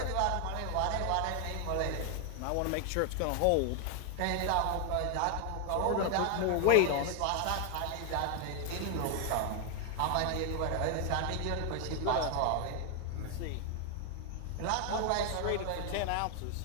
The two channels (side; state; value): both; different; correlation 0.00